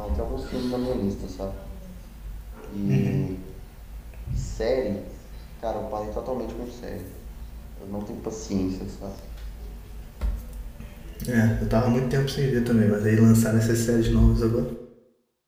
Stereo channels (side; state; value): both; identical; correlation 1.00